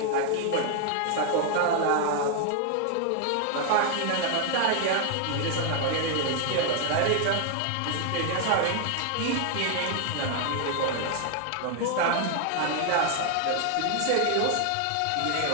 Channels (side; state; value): both; different; correlation 0.00